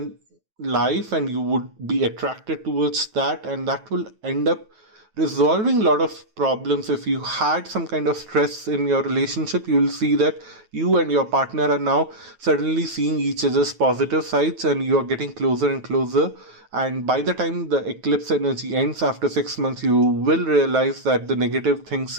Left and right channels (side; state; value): left; late; 9.2 ms